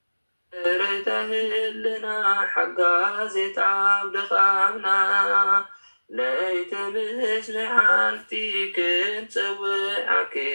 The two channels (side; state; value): both; inverted; correlation -1.00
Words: ريتهلنا حقا زيت عبد خامنا ليت مش لحالتي كنت سوي